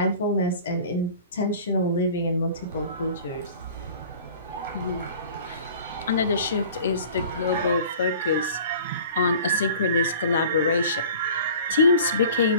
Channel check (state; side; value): inverted; both; correlation -0.45